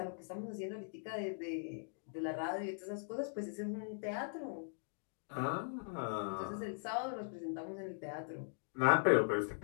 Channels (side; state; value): right; silent; digital silence